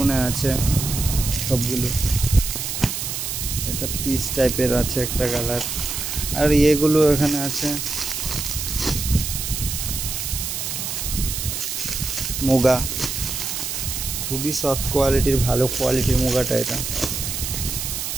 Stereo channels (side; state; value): right; noise; hiss, 4 dB below the sound